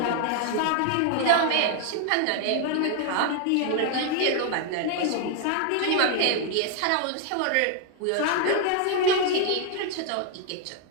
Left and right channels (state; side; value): different; both; correlation 0.00